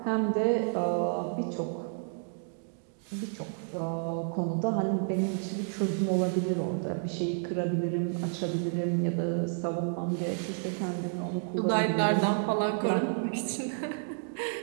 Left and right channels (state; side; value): silent; left; digital silence